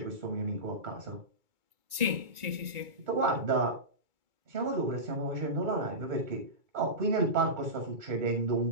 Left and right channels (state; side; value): late; left; 2.2 ms